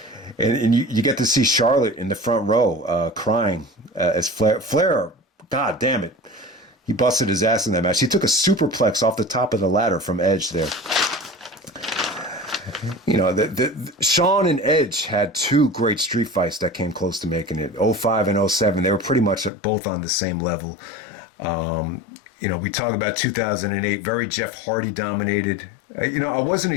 And you get to see Charlotte in the front row crying as Flair, God damn it. He busted his ass in that match. He took a superplex off the top of the ladder from Edge there. The Shawn and Edge had two great street fights that came close to making it. 05 and 07, they were pretty much both on the same level. We talk about 2008, very Jeff Hardy dominated. I wasn't a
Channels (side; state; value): right; drops out; at 19.5 s